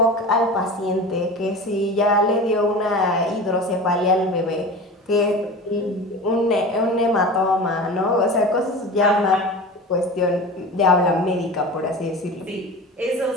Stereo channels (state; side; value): normal; both; correlation 0.33